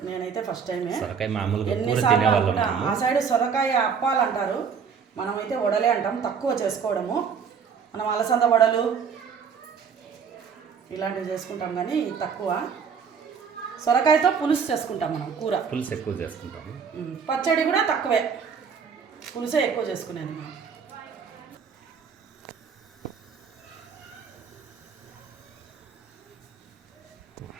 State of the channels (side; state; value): left; quieter; 6.4 dB